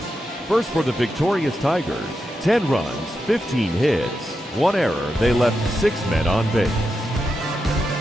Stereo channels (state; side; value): normal; both; correlation 0.87